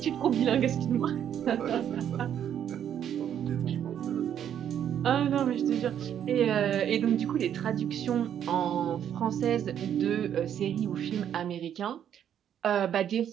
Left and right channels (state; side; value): quieter; left; 9.6 dB